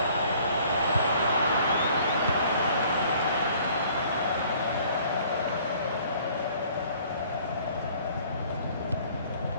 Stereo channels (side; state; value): both; inverted; correlation -0.56